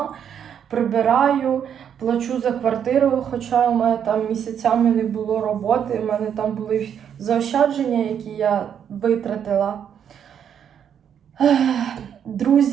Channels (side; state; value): left; quieter; 8.5 dB